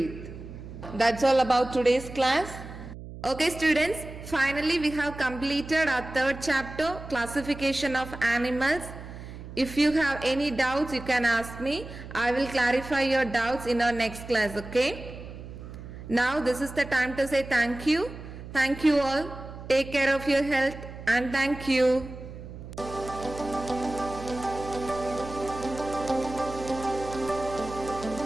That's all about today's class. Okay students, finally we have completed our third chapter, classification of animals. If you have any doubts, you can ask me. I will clarify your doubts in our next class, okay? Now this is the time to say thank you. Thank you all. Take care of your health and thank you.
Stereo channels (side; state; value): right; noise; hum, 13 dB below the sound